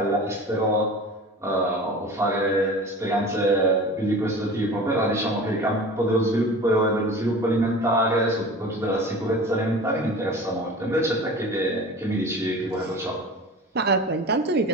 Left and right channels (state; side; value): normal; both; correlation 0.37